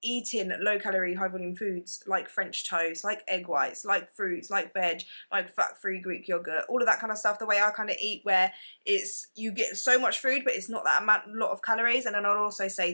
eating low calorie, high volume foods like French toast, like egg whites, like fruits, like veg, like fat free Greek yogurt, all of that kind of stuff, the way I kind of eat, where it's, you get so much food but it's not that lot of calories. And then I'd also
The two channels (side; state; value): both; inverted; correlation -1.00